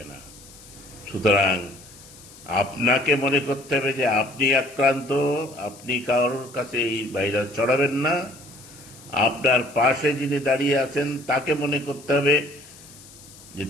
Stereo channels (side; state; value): left; noise; hiss, 21 dB below the sound